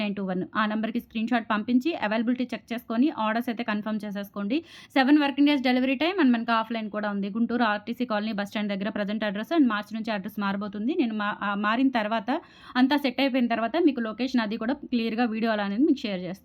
ఆ నెంబర్కి స్క్రీన్ షాట్ పంపించి అవైలబిలిటీ చెక్ చేసుకొని ఆర్డర్స్ అయితే కన్ఫర్మ్ చేసేసుకోండి. 7 working days delivery time and మనకి ఆఫ్లైన్ కూడా ఉంది. Guntur RTC colony bus stand దగ్గర ప్రజెంట్ అడ్రస్. అండ్ మార్చి నుంచి అడ్రస్ మారబోతుంది. నేను మారిన తర్వాత అంతా సెట్ అయిపోయిన తర్వాత మీకు లొకేషన్ అది కూడా క్లియర్గా వీడియో అనేది మీకు షేర్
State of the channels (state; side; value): identical; both; correlation 1.00